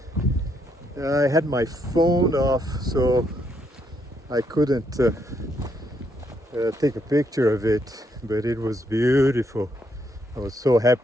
I had my phone off, so I couldn't take a picture of it, but it was beautiful. I was so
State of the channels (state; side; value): normal; both; correlation 0.75